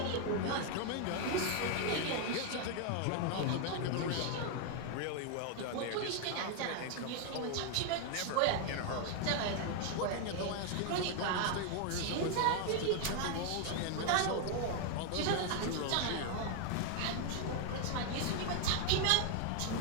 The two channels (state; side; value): different; both; correlation 0.00